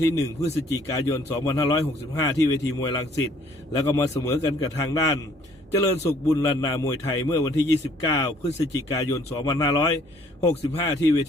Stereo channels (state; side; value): normal; both; correlation 0.60